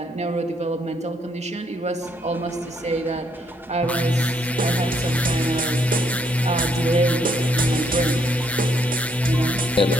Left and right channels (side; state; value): both; normal; correlation 0.71